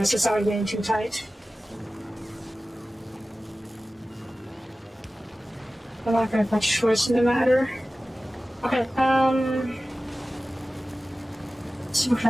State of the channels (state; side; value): normal; both; correlation 0.96